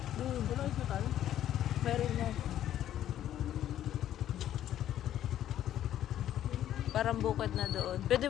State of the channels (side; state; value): right; quieter; 11.7 dB